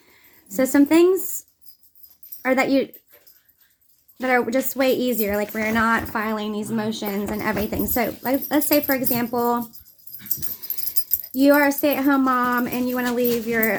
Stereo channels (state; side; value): identical; both; correlation 1.00